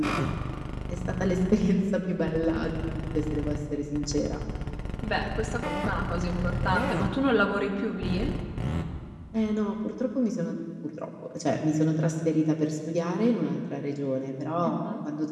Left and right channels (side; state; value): both; identical; correlation 1.00